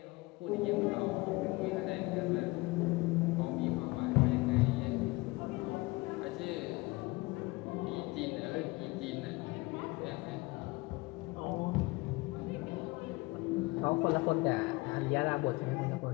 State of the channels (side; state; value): right; quieter; 23.4 dB